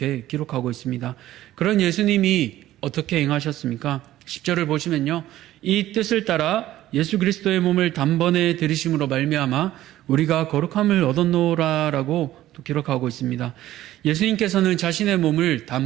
기록하고 있습니다. 그런 예수님이 어떻게 행하셨습니까? 10절을 보시면요, 이 뜻을 따라 예수 그리스도의 몸을 단번에 들이심으로 말미암아 우리가 거룩함을 얻었노라라고 또 기록하고 있습니다. 예수님께서는 자신의 몸을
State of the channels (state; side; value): quieter; left; 14.3 dB